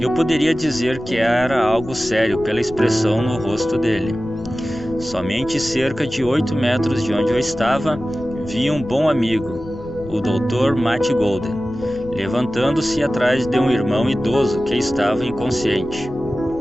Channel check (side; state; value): left; noise; rumble, 16 dB below the sound